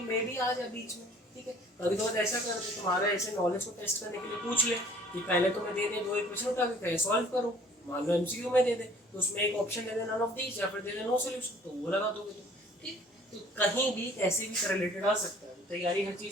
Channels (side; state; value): both; normal; correlation 0.54